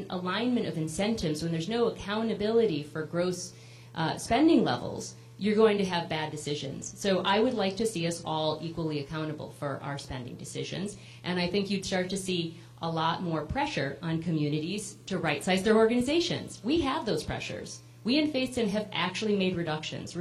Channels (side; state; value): both; identical; correlation 1.00